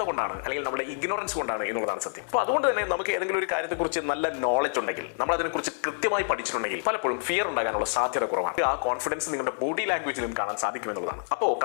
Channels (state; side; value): silent; right; digital silence